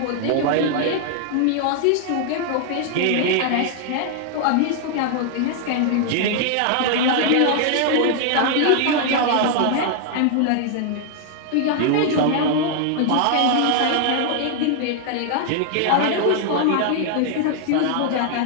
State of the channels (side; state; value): both; different; correlation 0.00